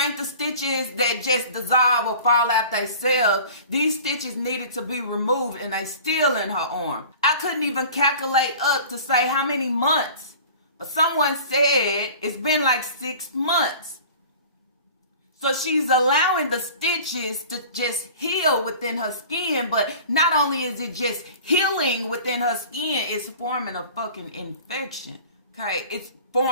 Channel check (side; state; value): both; inverted; correlation -0.42